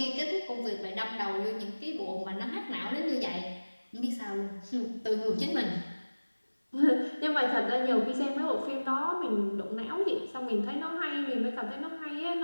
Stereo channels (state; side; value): inverted; both; correlation -1.00